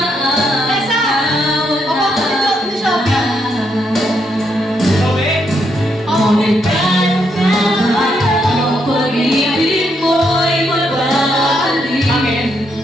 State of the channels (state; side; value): normal; both; correlation 0.77